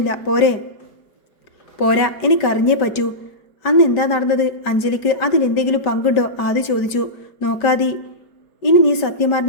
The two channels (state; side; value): late; right; 4.9 ms